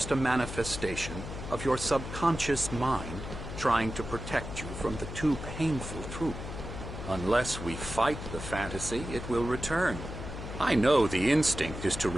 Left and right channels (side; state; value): left; noise; hum, 8 dB below the sound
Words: a manifestation of your subconscious mind trying to protect you from the too painful truth. Unless we fight the fantasy, it will return. I know the instinct is to